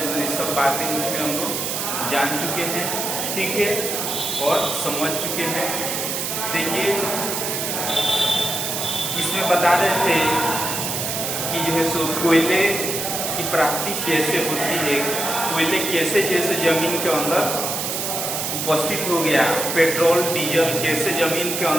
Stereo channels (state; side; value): noise; right; hiss, 2 dB below the sound